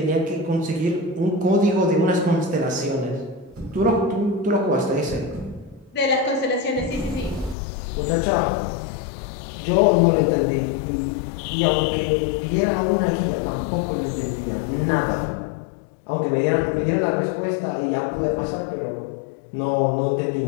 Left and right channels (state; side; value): drops out; right; at 7.6 s